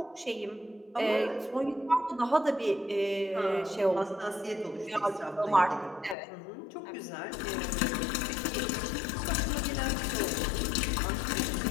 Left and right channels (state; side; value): drops out; right; at 6.2 s